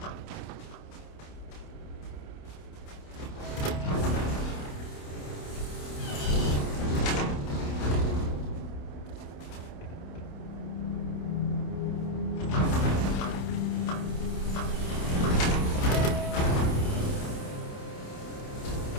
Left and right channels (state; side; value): late; right; 28 ms